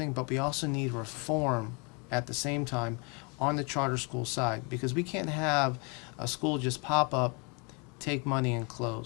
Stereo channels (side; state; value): right; quieter; 31.7 dB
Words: but we also need reform at the same time on the charter school side, because we can't have a school just pop up, take money, and